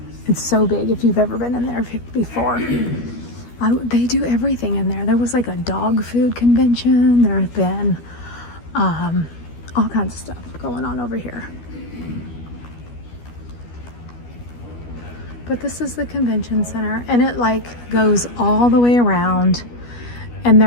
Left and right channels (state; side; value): late; right; 12 ms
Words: so big if you've ever been in there before. They do everything in there. There was like a dog food convention. There have been all kinds of stuff going on over here. But this is the convention center, and it like goes all the way around, and